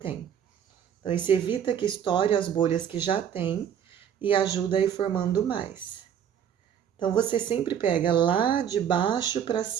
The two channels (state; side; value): quieter; left; 8.8 dB